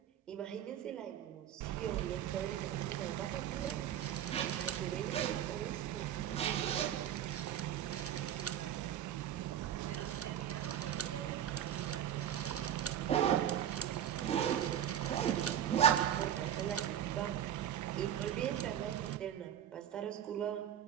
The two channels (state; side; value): quieter; left; 10.4 dB